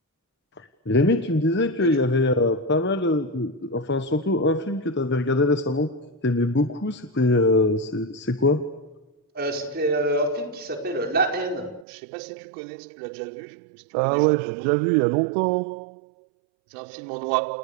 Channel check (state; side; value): drops out; left; at 11.9 s